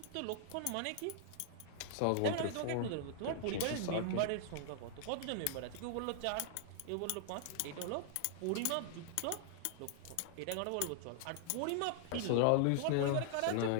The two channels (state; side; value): different; both; correlation -0.01